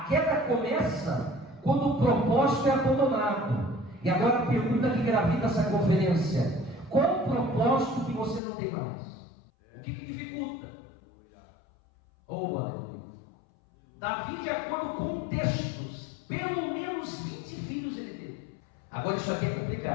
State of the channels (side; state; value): right; drops out; at 8.4 s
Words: queda começa quando o propósito é abandonado. E agora a pergunta que gravita essa conferência: qual o propósito que você não tem mais? O que dificulta? Oh, aleluia. Davi, de acordo com textos, pelo menos 20 filhos ele teve. Agora isso aqui é